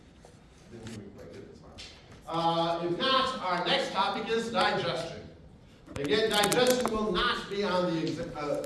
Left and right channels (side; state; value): both; identical; correlation 1.00